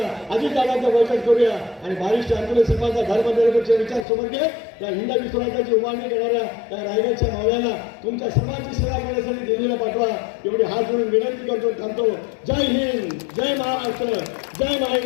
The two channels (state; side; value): drops out; right; at 4.0 s